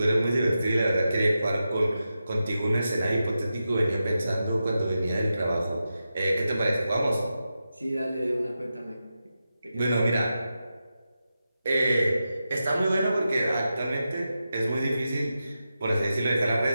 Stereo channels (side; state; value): both; inverted; correlation -0.90